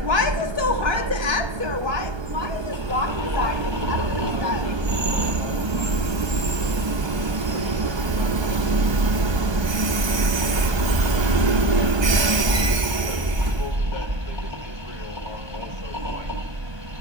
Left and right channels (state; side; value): late; left; 1.2 ms